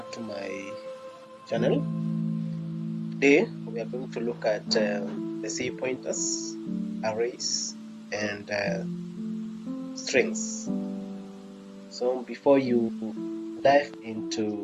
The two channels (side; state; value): both; identical; correlation 1.00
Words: to my channel. Today we are going to look at the C pointers, arrays, and strings. So before you dive